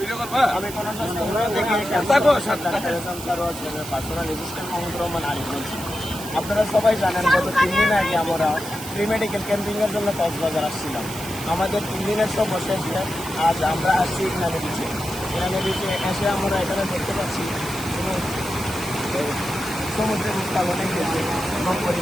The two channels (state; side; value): noise; right; hiss, 11 dB below the sound